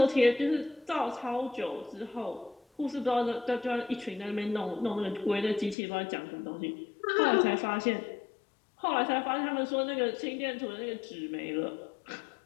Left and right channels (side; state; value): right; drops out; at 5.8 s